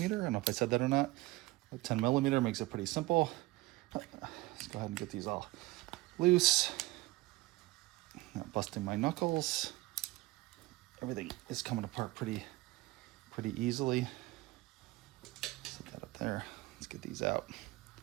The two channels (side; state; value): left; quieter; 20.2 dB